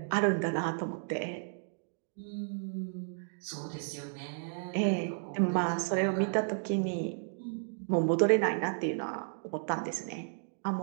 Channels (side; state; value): left; silent; digital silence